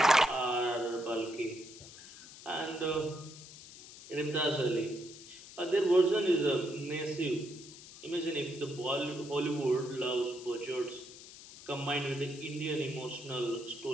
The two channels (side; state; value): left; noise; hiss, 16 dB below the sound